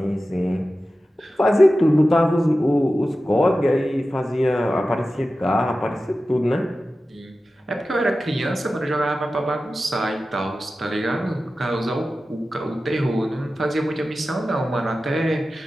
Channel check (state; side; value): normal; both; correlation 0.94